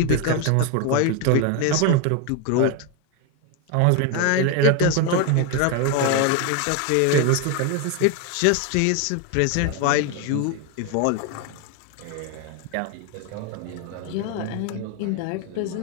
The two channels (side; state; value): both; different; correlation 0.01